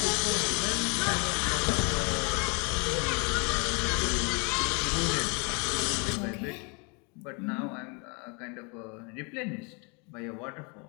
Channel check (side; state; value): right; quieter; 33.4 dB